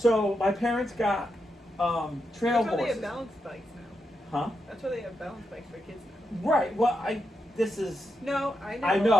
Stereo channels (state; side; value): normal; both; correlation 0.85